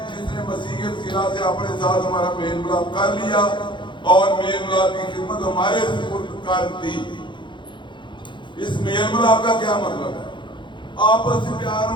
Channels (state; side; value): late; right; 0.23 ms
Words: جس نے مسیح کے وسیلہ سے اپنے ساتھ ہمارا میل ملاپ کر لیا اور میل ملاپ کی خدمت ہمارے سپرد کر دی. اس میل ملاپ کا کیا مطلب ہے؟ آپس سے پیار